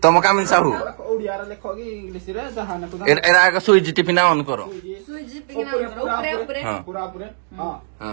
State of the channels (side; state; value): left; silent; digital silence